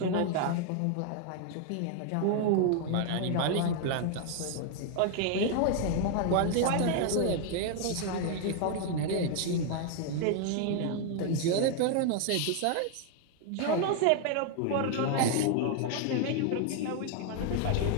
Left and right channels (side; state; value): both; different; correlation 0.00